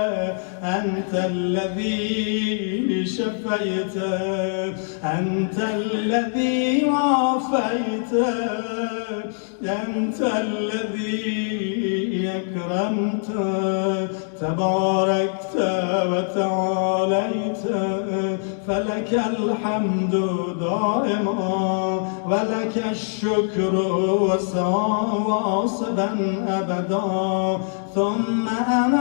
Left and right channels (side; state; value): right; silent; 63 dB below the other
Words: أنت الذي شفيت، أنت الذي عافيت، أنت الذي أكرمت، تباركت وتعاليت، فلك الحمد دائما ولك الشكر واصبا أبدا. ثم